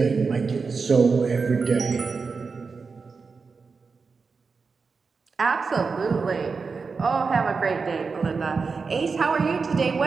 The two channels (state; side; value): quieter; left; 4.8 dB